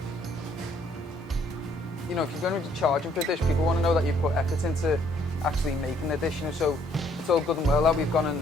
You know, if you're going to be charging for a dish, people want to know that you put effort into actually making the dish, you know, so it's all good and well that we've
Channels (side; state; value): both; normal; correlation 0.65